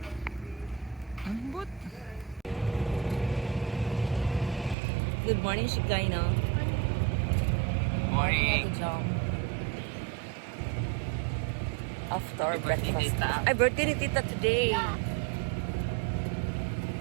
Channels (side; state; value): left; drops out; at 4.8 s